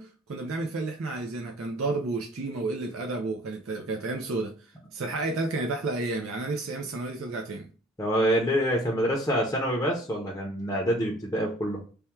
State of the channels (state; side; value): normal; both; correlation 0.52